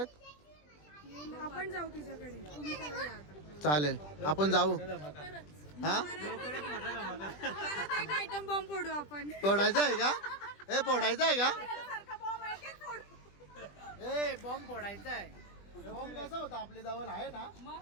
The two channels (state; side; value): late; right; 20 ms